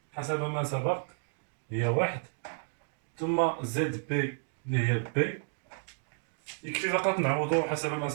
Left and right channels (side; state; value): left; silent; 57 dB below the other